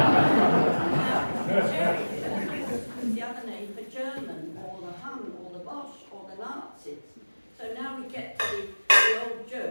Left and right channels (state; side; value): inverted; both; correlation -1.00